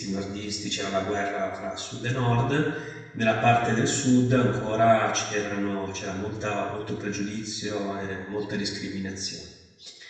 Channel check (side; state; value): both; identical; correlation 1.00